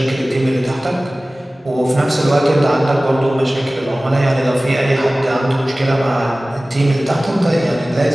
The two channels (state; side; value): normal; both; correlation 0.97